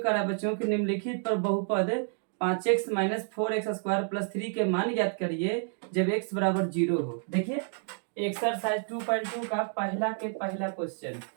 करा बच्चों की निम्नलिखित पर बहुपद 5x minus 4x square plus 3 के मान ज्ञात करिए जब x बराबर 0 हो। देखिए एक्सरसाइज 2.2 का पहला क्वेश्चन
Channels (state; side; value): silent; left; 58 dB below the other